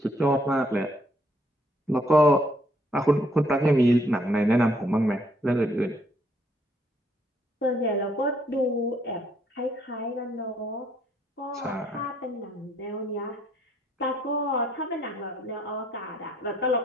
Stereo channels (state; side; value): normal; both; correlation 0.68